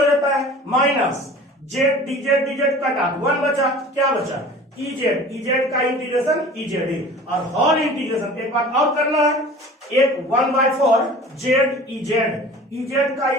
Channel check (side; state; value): both; normal; correlation 0.42